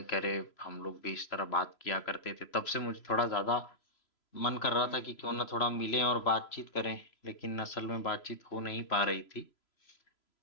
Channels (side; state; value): right; late; 3.0 ms